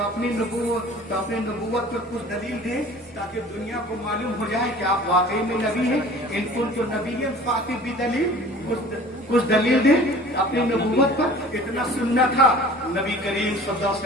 نبوت پر کچھ دلیل دیں تاکہ دنیا کو معلوم ہو جائے کہ آپ واقعی میں نبی ہیں۔ ان کنتم نبیا فأتوا بدلیل، کچھ دلیل دیں اپنی نبوت پر۔ اتنا سننا تھا، نبی کریم صلی اللہ علیہ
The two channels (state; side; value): normal; both; correlation 0.45